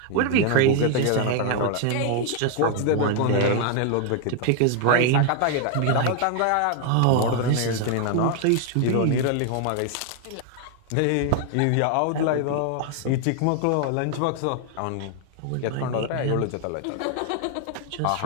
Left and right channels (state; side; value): different; both; correlation 0.00